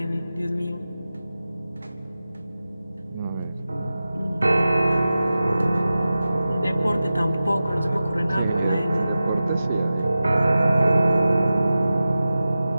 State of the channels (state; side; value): inverted; both; correlation -0.94